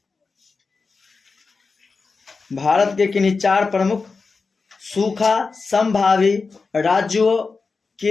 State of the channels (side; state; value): right; quieter; 4.4 dB